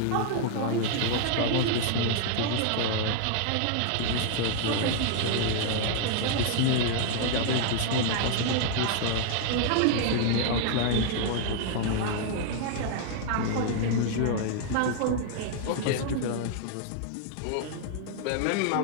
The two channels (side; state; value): both; different; correlation 0.00